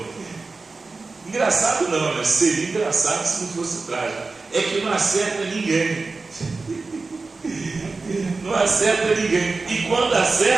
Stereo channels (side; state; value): left; quieter; 3.9 dB